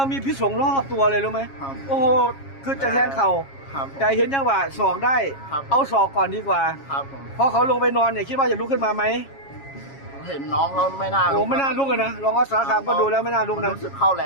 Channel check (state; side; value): late; right; 7.3 ms